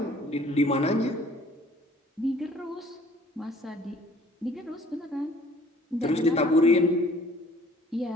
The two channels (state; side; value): normal; both; correlation 0.55